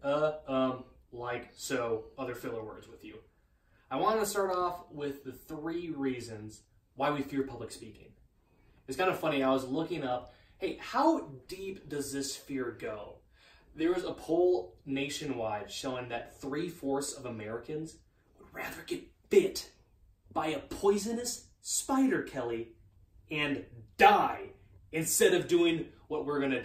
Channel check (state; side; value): identical; both; correlation 1.00